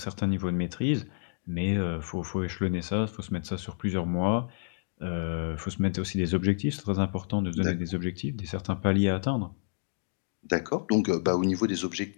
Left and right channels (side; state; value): right; silent; digital silence